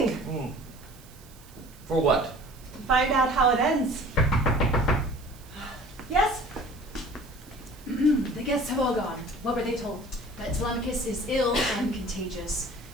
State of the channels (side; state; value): right; noise; hiss, 24 dB below the sound